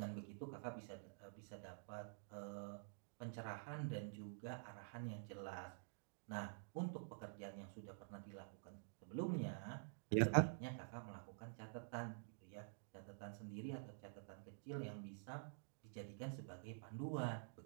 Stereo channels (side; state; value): left; silent; digital silence